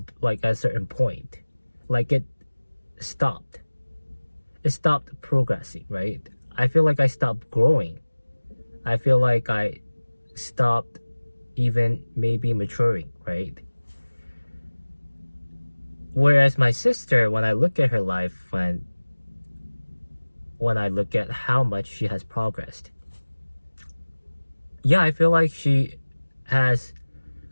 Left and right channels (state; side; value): inverted; both; correlation -1.00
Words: like at a certain point, like stopped. It stopped progressing, right? I feel like I stopped growing. I feel like I stopped even maybe maturing, right? Whereas my sister, when I look at her life, when I look at how much she has progressed, yeah, I feel like she has